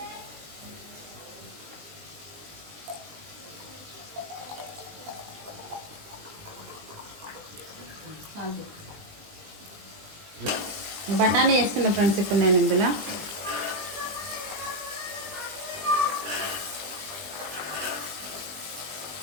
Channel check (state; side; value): late; left; 20 ms